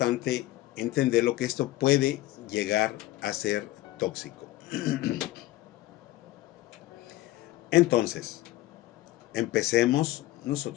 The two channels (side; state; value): right; quieter; 16.6 dB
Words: entender lo que esto puede llegar a ser tóxico. Entonces, empecemos